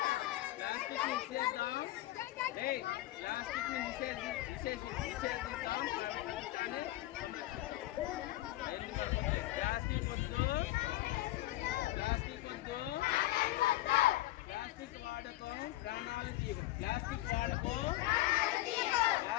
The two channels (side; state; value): right; quieter; 16.6 dB